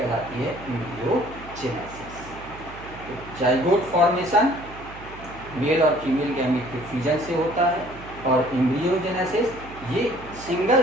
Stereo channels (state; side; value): noise; right; hum, 16 dB below the sound